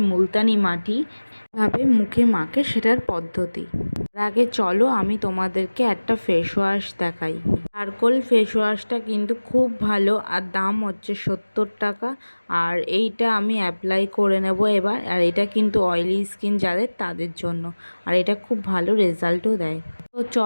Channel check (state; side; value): inverted; both; correlation -1.00